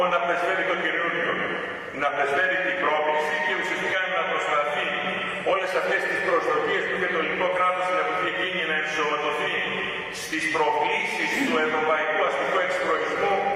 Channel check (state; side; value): identical; both; correlation 1.00